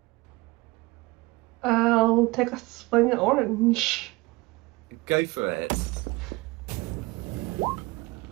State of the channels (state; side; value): quieter; left; 22.8 dB